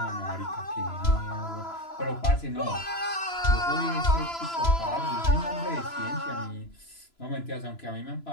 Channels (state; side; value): late; right; 3.0 ms